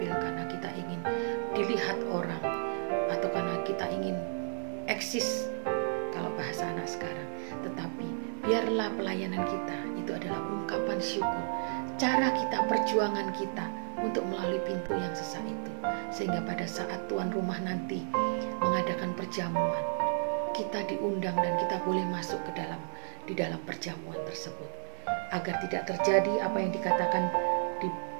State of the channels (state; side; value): silent; left; 56 dB below the other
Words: karena kita ingin dilihat orang, atau karena kita ingin eksis kalau bahasa anak sekarang. Tetapi biarlah pelayanan kita itu adalah ungkapan syukur, cara kita, perjuangan kita untuk melalui pintu yang sesak itu, sehingga pada saat tuan rumah nanti mengadakan perjamuan, kita diundang dan kita boleh masuk di dalam perjamuan tersebut. Agar tidak terjadi apa yang dikatakan di